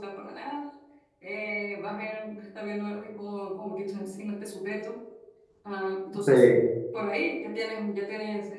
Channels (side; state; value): both; identical; correlation 1.00